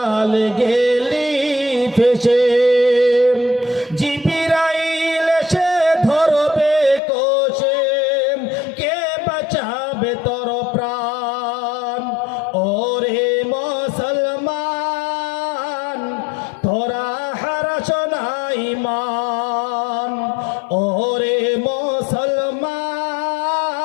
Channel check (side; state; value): right; drops out; at 7.0 s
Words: গেলি ফেসে, জিবিরাইল এসে ধরবে কোষে, কে বাঁচাবে তোর প্রাণ? ওরে মুসলমান তোরা হারাস না ঈমান, ওরে মুসলমান